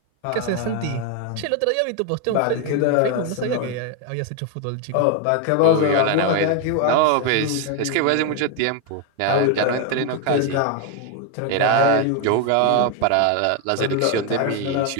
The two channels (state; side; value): different; both; correlation 0.01